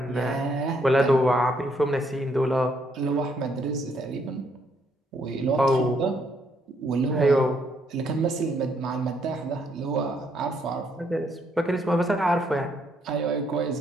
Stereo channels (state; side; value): normal; both; correlation 0.71